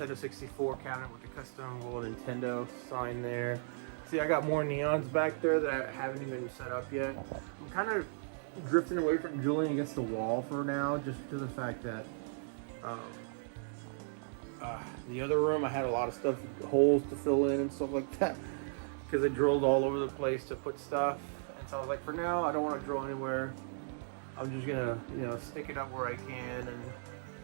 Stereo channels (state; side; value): silent; left; digital silence